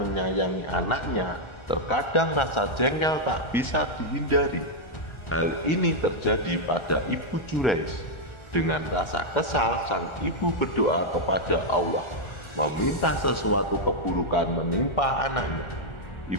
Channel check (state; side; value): late; right; 1.4 ms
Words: anaknya, terkadang rasa jengkel tak bisa dihindari. Hal ini terjadi pada ibu Jurayj. Dengan rasa kesal, sang ibu berdoa kepada Allah, meminta sesuatu keburukan menimpa anaknya.